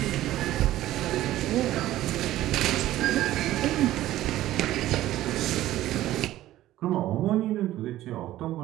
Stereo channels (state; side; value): quieter; left; 14.6 dB